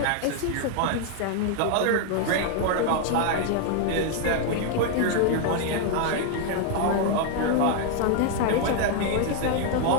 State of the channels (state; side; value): different; both; correlation 0.00